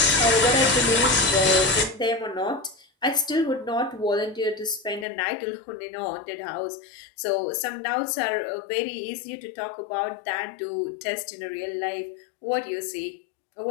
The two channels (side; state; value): right; drops out; at 5.1 s